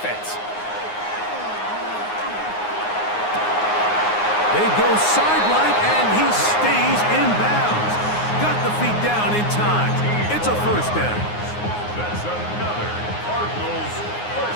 They go sideline, and he stays in bounds. Got the feet down in time. It's a first down. That's another Cardinals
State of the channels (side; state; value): right; late; 9.6 ms